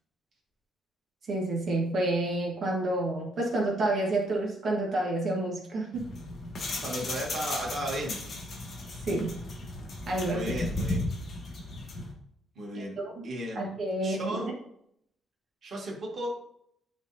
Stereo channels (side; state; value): both; normal; correlation 0.69